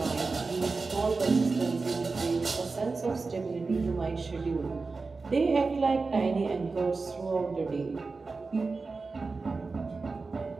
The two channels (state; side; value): quieter; left; 4.1 dB